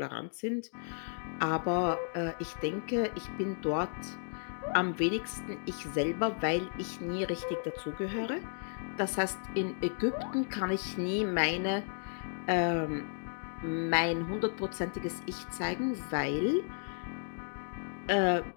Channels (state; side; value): silent; right; digital silence